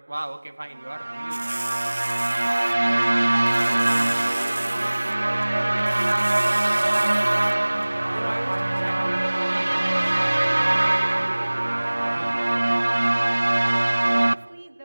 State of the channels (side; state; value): both; inverted; correlation -1.00